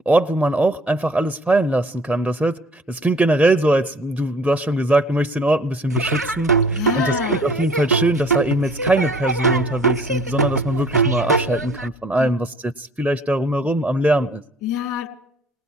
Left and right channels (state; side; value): normal; both; correlation 0.53